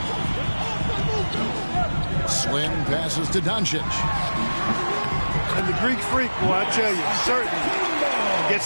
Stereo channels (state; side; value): inverted; both; correlation -1.00